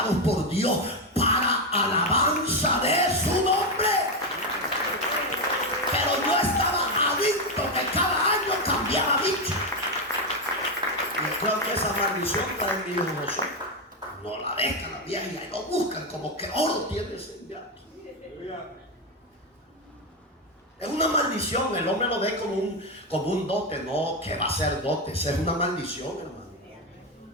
por Dios para alabanza de su nombre. Pero yo estaba adicto que cada año cambiaba bicho. Y creo que esa maldición está en mi hijo Josué. No la dejan la vieja y lo buscan como que oro tiene ese diablo. Es una maldición, el hombre lo ve como un dote, no, que va a ser dote, es una maldición, hermano.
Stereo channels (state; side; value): normal; both; correlation 0.09